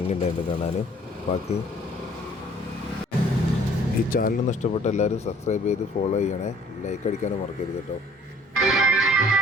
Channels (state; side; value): normal; both; correlation 0.56